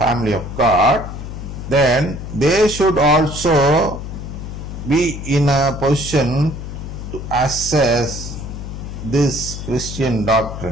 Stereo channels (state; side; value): noise; left; hum, 8 dB below the sound